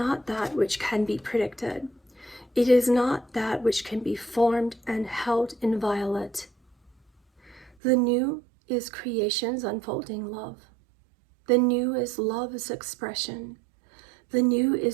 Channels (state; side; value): drops out; left; at 7.7 s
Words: that which can be predicted. It is not that which can be formed and held inviolate. The new is creation's unfolding love. The new is love's expression. The new